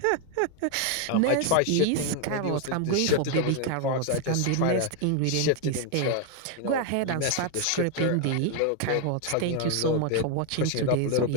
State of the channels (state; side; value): different; both; correlation 0.01